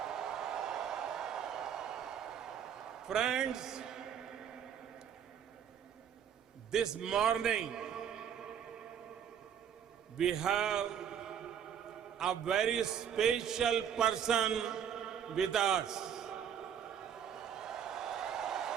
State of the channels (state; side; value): quieter; left; 8.6 dB